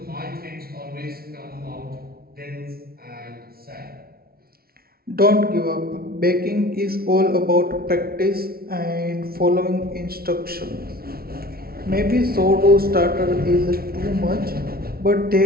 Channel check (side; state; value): left; late; 0.44 ms